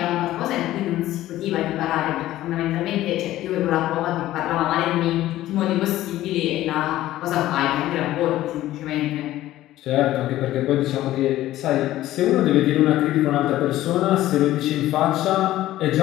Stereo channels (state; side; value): quieter; right; 14.7 dB